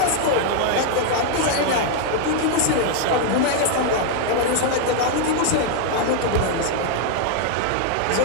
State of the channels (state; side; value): different; both; correlation 0.00